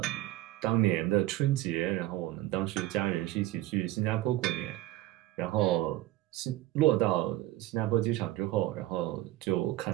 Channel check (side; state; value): left; quieter; 16.0 dB